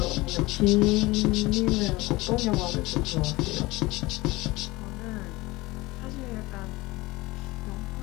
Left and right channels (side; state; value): right; quieter; 21.1 dB